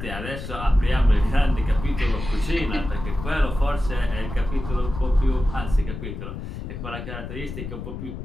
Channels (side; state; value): left; noise; rumble, 8 dB below the sound